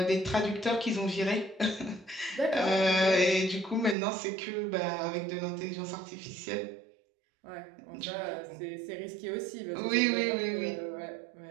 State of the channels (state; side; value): drops out; left; at 4.0 s